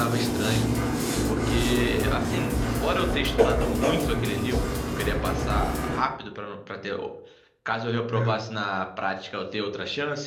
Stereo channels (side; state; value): both; identical; correlation 1.00